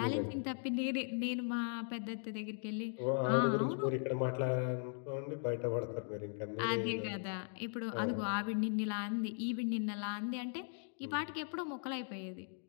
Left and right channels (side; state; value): right; silent; 52 dB below the other